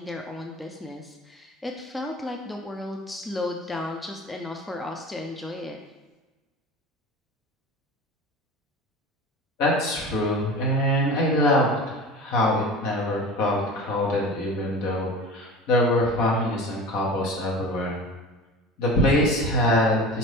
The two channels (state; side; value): normal; both; correlation 0.35